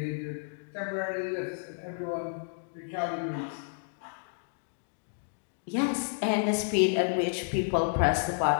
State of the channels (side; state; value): right; silent; digital silence